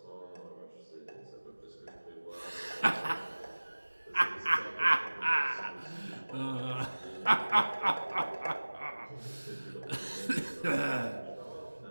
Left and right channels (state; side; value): inverted; both; correlation -1.00